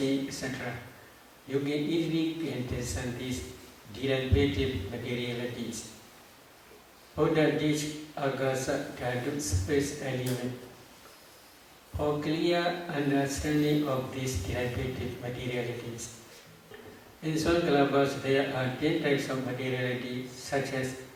etc. You can easily discern these derivative materialities. Buddha teach agasa dhatu space element. For clear understanding of these derivative materialities. In some kalapas there are 10 types of materiality such as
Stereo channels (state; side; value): identical; both; correlation 1.00